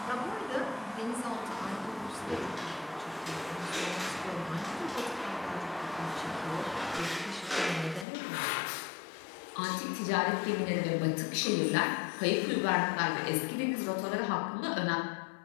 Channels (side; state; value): right; drops out; at 8.1 s